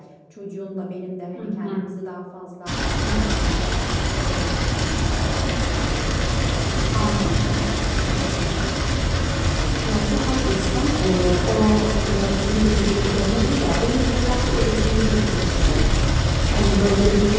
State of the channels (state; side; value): identical; both; correlation 1.00